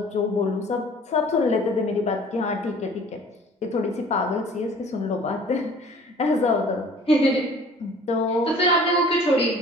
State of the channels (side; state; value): both; normal; correlation 0.49